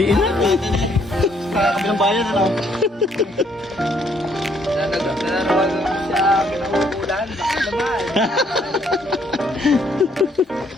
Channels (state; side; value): normal; both; correlation 0.68